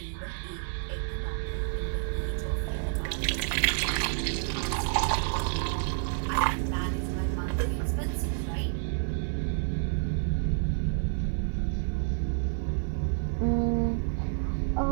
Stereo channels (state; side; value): silent; left; digital silence